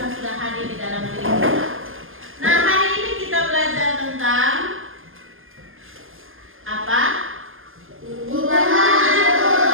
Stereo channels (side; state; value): left; late; 0.59 ms